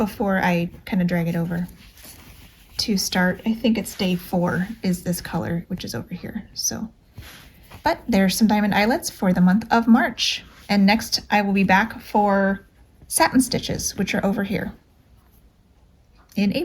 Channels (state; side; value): identical; both; correlation 1.00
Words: I kind of drag it over to start, I think it's day 4 is this color, which is over here. So, but there's some diamond eyelets for the month of March. And next I will be back for satin stitches, which are over here in